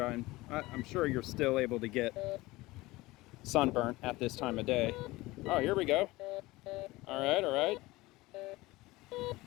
you're still able to get sunburnt at this time of day. Oh, here we go. All right.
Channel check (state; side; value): quieter; right; 20.0 dB